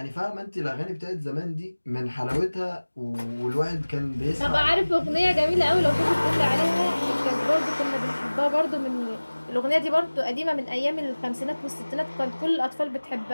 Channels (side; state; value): both; inverted; correlation -1.00